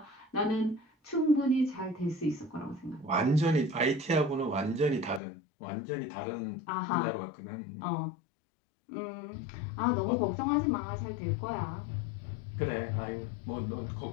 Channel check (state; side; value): drops out; right; at 5.2 s